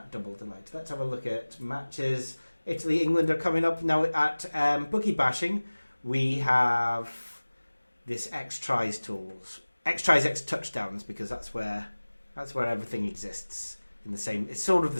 double delight. Let's have a look at matches. Italy, England are coming up now at bookie bashing. We have this X tries tools, X tries, X touchdowns, because that's where everything exists in the same. It's sort of the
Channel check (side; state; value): both; inverted; correlation -1.00